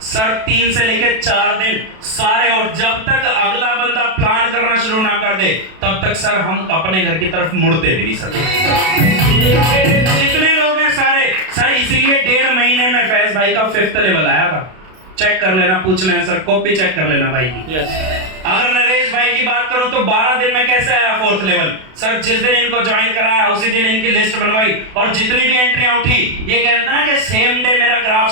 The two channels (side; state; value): left; late; 32 ms